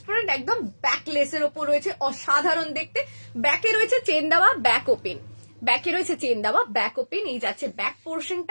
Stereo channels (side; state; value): both; inverted; correlation -1.00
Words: একদম ব্যাক লেসের ওপর রয়েছে, অসাধারণ দেখতে। ব্যাকে রয়েছে চেন দেওয়া, ব্যাক ওপেন, ব্যাকে রয়েছে চেন দেওয়া, ব্যাক ওপেন। এই যাচ্ছে ব্যাক